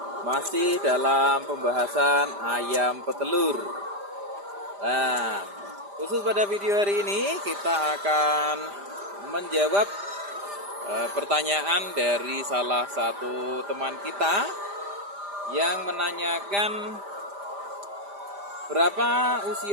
masih dalam pembahasan ayam petelur. Nah, khusus pada video hari ini kita akan menjawab pertanyaan dari salah satu teman kita yang menanyakan berapa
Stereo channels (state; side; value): late; left; 5.0 ms